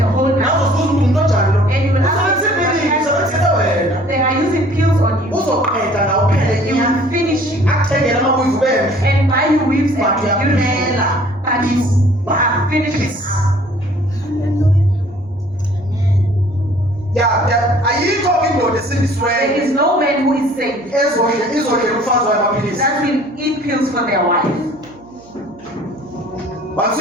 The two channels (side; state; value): right; noise; hum, 25 dB below the sound